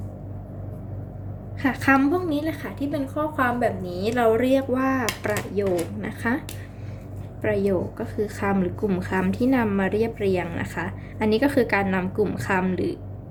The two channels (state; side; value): identical; both; correlation 1.00